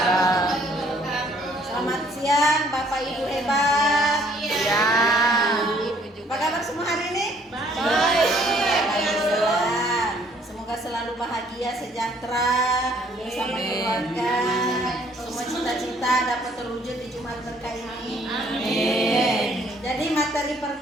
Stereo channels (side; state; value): both; normal; correlation 0.62